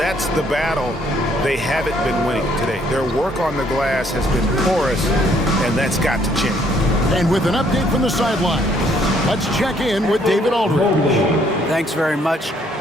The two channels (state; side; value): normal; both; correlation 0.66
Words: the battle they haven't been winning today. Their work on the glass has been porous, and that's got to change. And with an update from the sideline, let's check in with David Aldridge. Thanks very much.